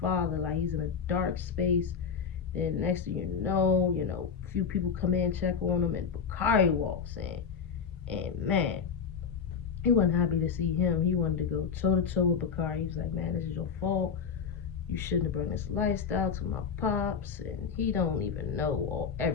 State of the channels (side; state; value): right; quieter; 6.5 dB